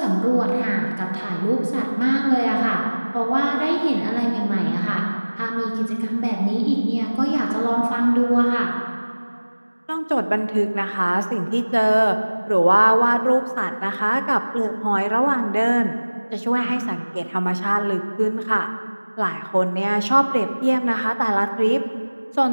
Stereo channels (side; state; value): both; inverted; correlation -1.00